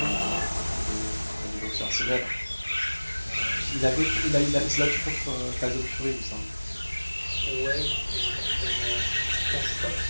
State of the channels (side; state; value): both; inverted; correlation -1.00